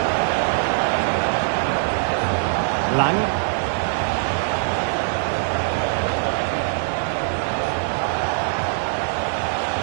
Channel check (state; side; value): silent; left; digital silence